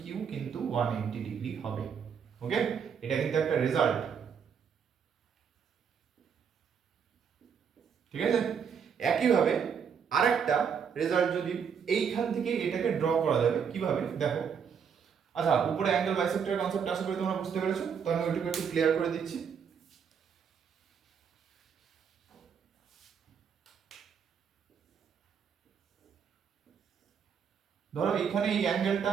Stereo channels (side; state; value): left; quieter; 7.0 dB